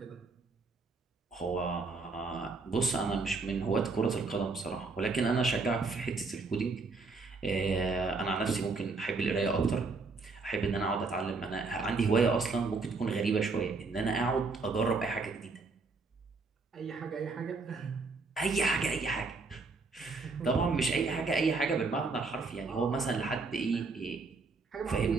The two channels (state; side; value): quieter; left; 4.0 dB